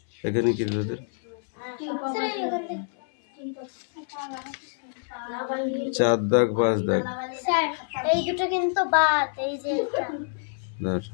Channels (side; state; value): right; silent; 61 dB below the other